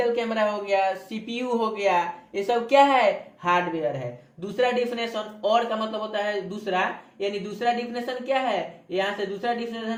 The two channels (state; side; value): identical; both; correlation 1.00